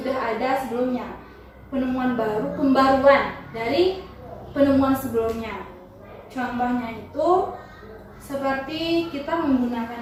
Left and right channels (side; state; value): both; identical; correlation 1.00